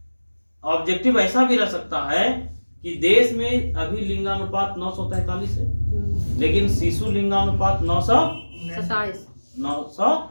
ऑब्जेक्टिव ऐसा भी रह सकता है कि देश में अभी लिंगानुपात 943 है, लेकिन शिशु लिंगानुपात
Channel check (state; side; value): inverted; both; correlation -1.00